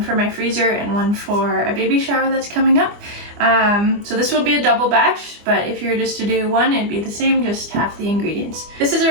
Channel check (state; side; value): late; left; 25 ms